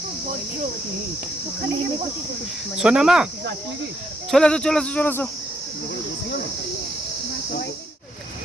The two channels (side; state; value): both; normal; correlation 0.74